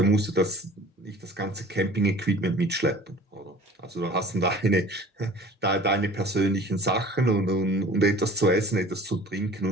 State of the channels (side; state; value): both; normal; correlation 0.46